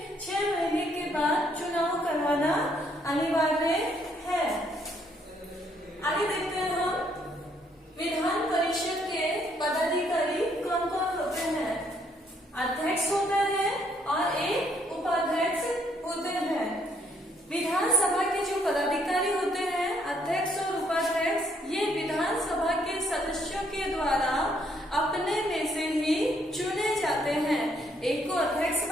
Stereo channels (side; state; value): both; normal; correlation 0.70